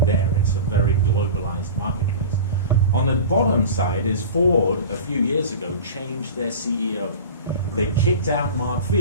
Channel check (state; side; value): inverted; both; correlation -0.32